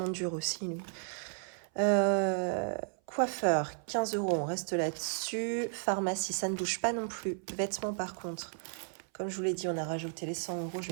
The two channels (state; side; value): silent; left; 55 dB below the other